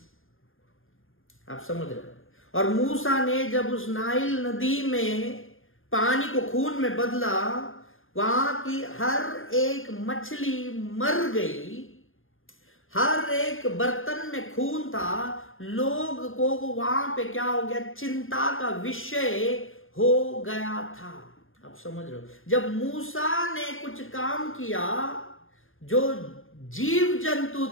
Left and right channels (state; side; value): late; right; 0.59 ms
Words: आप समझ रहे हो। और मूसा ने जब उस नाइल नदी में पानी को खून में बदला, वहां की हर एक मछली मर गई, हर एक बर्तन में खून था। लोग को वहां पे क्या हो गया, चिंता का विषय हो गया था। आप समझ रहे हो, जब मूसा ने कुछ काम किया, जो जीव जंतु